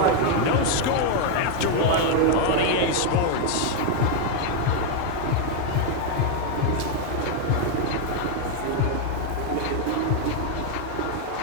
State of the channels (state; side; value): different; both; correlation 0.00